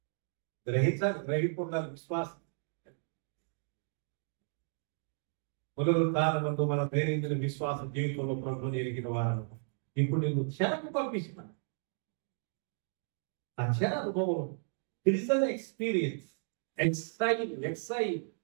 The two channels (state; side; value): silent; left; digital silence